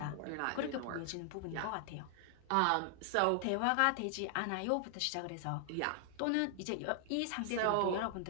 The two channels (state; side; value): different; both; correlation 0.00